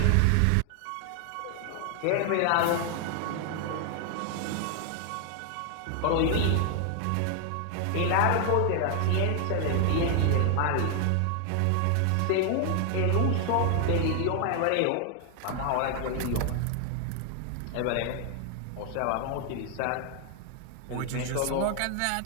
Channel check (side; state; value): both; different; correlation 0.00